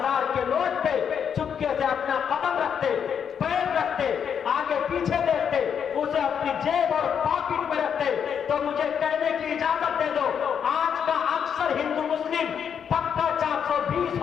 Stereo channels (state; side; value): quieter; right; 7.7 dB